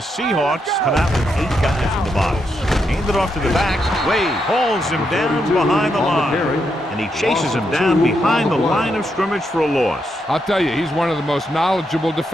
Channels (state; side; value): normal; both; correlation 0.81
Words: come out with 8 guys in the box. Hand it off to the back. Wade hauls him down behind the line. And he chases him down behind the line of scrimmage for a loss. I'll tell you, he's one of the most knowledgeable